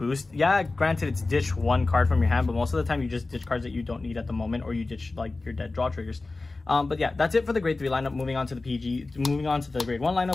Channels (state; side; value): quieter; right; 3.4 dB